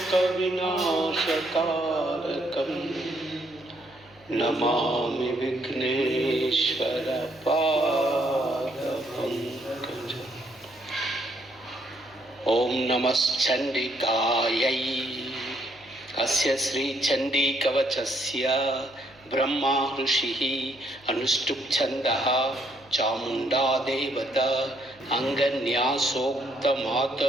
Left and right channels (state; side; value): noise; right; hum, 28 dB below the sound